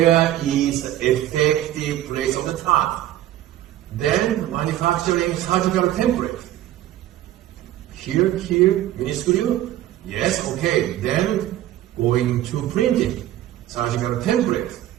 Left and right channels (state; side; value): quieter; left; 13.4 dB